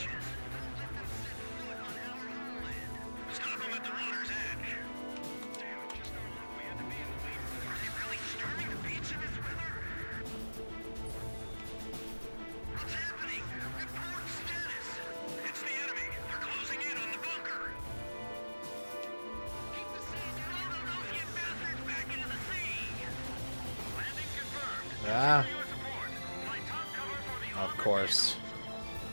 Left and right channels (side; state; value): both; inverted; correlation -1.00